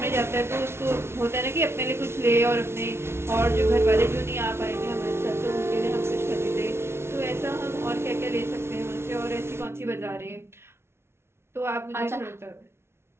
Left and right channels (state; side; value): late; left; 0.12 ms